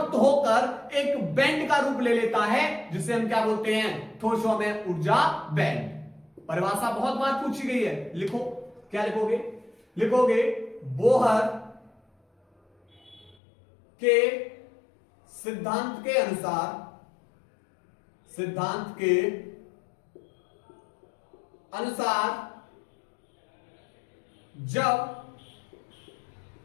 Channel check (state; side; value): drops out; right; at 13.4 s